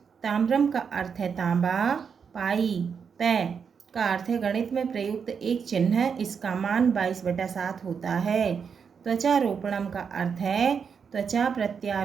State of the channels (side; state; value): left; quieter; 6.4 dB